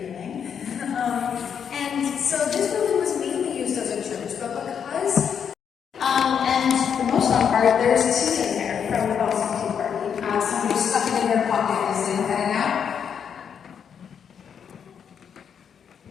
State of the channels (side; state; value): right; quieter; 7.6 dB